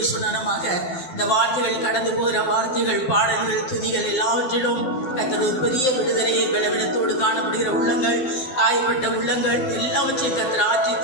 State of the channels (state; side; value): late; right; 12 ms